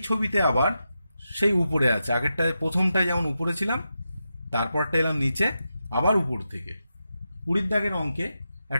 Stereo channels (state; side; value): inverted; both; correlation -0.88